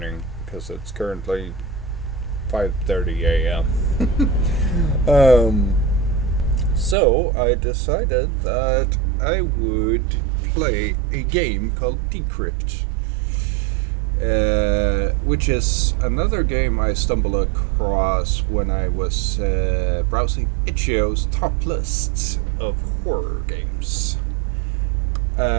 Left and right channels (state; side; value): drops out; left; at 7.0 s